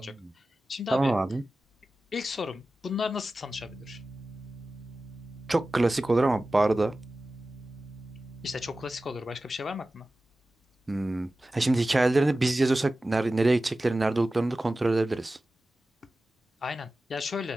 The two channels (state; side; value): normal; both; correlation 0.95